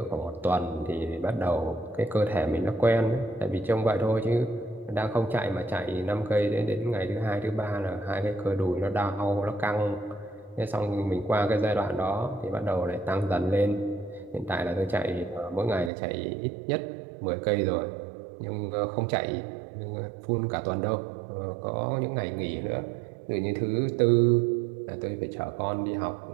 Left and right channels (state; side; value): drops out; left; at 15.9 s